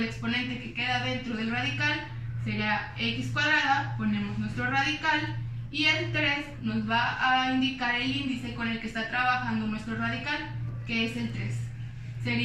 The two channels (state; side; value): identical; both; correlation 1.00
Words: exponente que queda dentro del radical, sería x cuadrada, ponemos nuestro radical y el 3 nos va a indicar el índice con el que está trabajando nuestro radical, que es el 3.